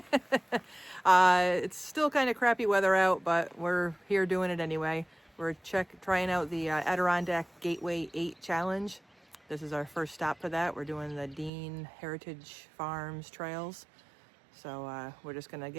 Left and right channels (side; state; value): left; drops out; at 11.5 s